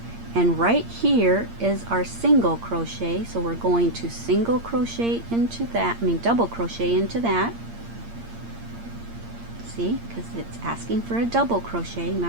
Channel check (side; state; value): left; late; 8.7 ms